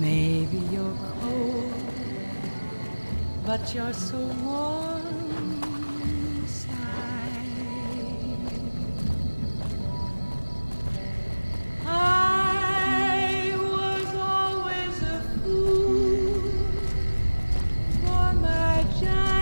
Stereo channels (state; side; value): inverted; both; correlation -1.00